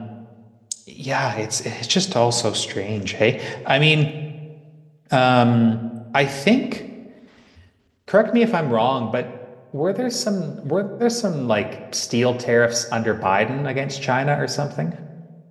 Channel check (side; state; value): both; identical; correlation 1.00